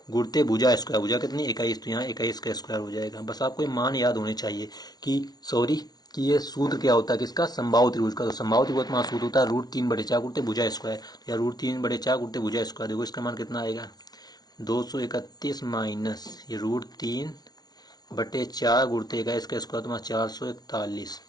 गुणित भुजा स्क्वायर। भुजा कितनी? 21, तो यहाँ 21 का स्क्वायर हो जाएगा। बस आपको ये मान याद होने चाहिए कि ये सूत्र क्या होता है किसका? समबाहु त्रिभुज का। तो समबाहु त्रिभुज में सूत्र होता है √3/4 गुणित भुजा स्क्वायर, या √3/4 गुणित भुजा स्क्वायर। देखो इसका मान कितना आएगा? 231 माइनस ये √3/4 गुणित 21 का स्क्वायर तुम्हारा 441।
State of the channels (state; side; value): late; right; 0.19 ms